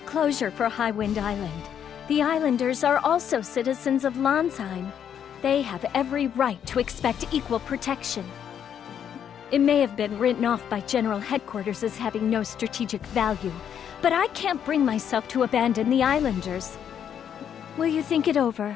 closure for Highwind Island. The islanders are also citizens of Landsheim. They have every right to expect equal protection. It may have been written off by General Headquarters as having no strategic value, but I can't bring myself to abandon the islanders. Will you think it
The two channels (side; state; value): right; quieter; 8.8 dB